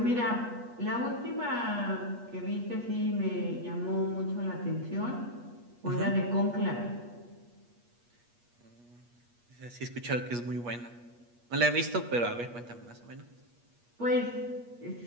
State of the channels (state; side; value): late; left; 8.4 ms